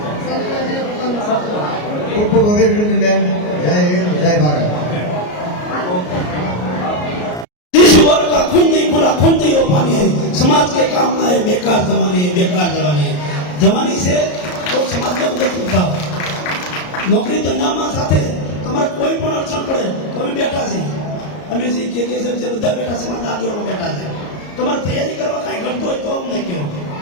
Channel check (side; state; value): right; late; 34 ms